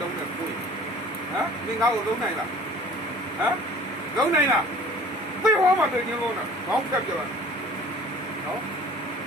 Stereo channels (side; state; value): both; normal; correlation 0.47